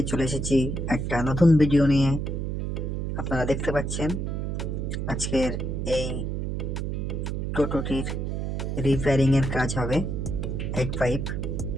চলে এসেছি একটা নতুন ভিডিও নিয়ে। আপনারা দেখতে পাচ্ছেন আজকের এই টোটোটির রিপেয়ারিং এর কাজ হবে। হেড পাইপ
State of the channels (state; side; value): noise; right; hum, 2 dB below the sound